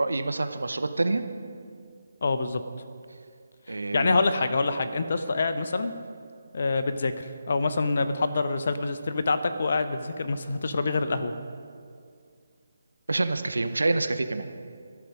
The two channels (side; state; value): both; inverted; correlation -0.90